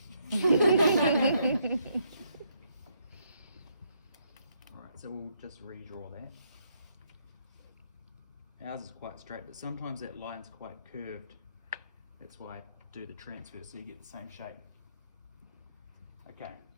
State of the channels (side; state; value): both; inverted; correlation -0.73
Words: Alright, so we'll just redraw that. Ours is quite straight, but sometimes that line's quite curved. That's why I do the transfer, so you get the same shape. Okay.